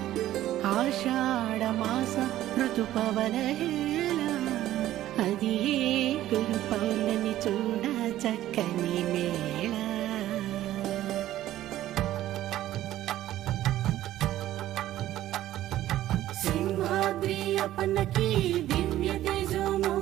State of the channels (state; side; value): quieter; left; 13.8 dB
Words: ఆషాఢమాస ఋతుపవనహేళ అది గురు పౌర్ణమి చూడ చక్కని మేళ సింహాద్రి అప్పన్నకి దివ్య